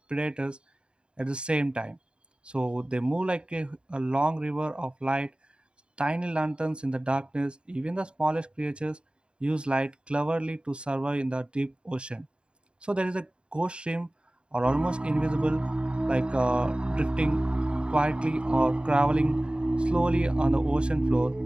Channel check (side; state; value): left; late; 0.053 ms